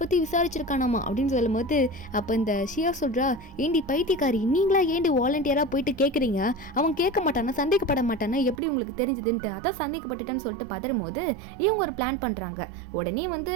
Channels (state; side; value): drops out; left; at 8.6 s